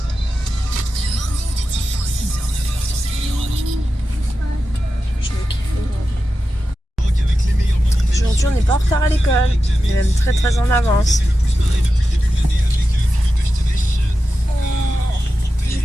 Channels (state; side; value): normal; both; correlation 0.92